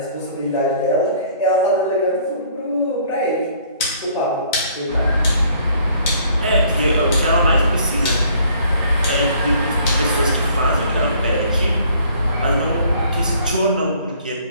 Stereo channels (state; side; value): inverted; both; correlation -0.59